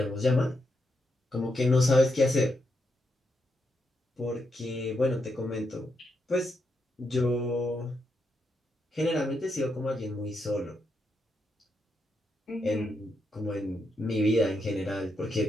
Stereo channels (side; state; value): both; normal; correlation 0.82